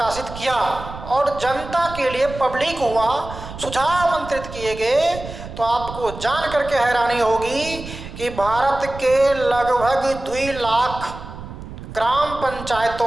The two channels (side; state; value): right; noise; rumble, 12 dB below the sound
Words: किया और जनता के लिए पब्लिक हुआ, सुझाव आमंत्रित किए गए, तो आपको जान करके हैरानी होगी कि भारत के लगभग 2 लाख ग्राम